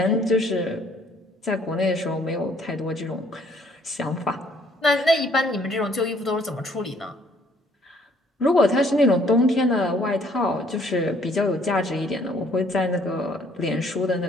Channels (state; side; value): normal; both; correlation 0.62